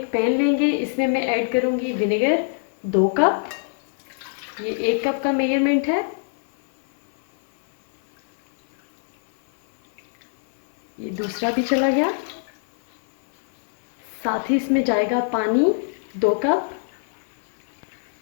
पैन लेंगे, इसमें मैं ऐड करूँगी विनेगर 2 कप। ये 1 कप का मेजरमेंट है। ये दूसरा भी चला गया। साथ ही इसमें जाएगा पानी 2 कप।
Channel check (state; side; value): silent; right; 58 dB below the other